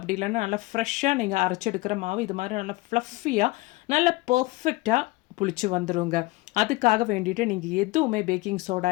இல்லைன்னா நல்லா ஃப்ரெஷ்ஷாக நீங்கள் அரைச்சி எடுக்கிற மாவு இது மாதிரி நல்லா ஃப்ளஃபியாக நல்லா பர்ஃபெக்டாக புளிச்சு வந்துடுங்க. அதுக்காக வேண்டிட்டு நீங்கள் எதுவுமே பேக்கிங் சோடா,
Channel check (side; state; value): right; quieter; 21.4 dB